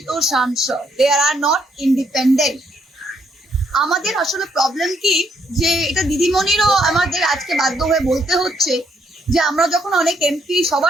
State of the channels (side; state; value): both; normal; correlation 0.72